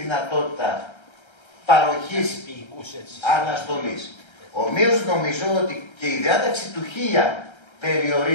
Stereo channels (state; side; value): late; right; 1.3 ms